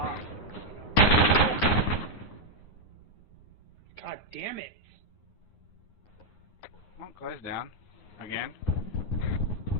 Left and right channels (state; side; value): late; right; 9.6 ms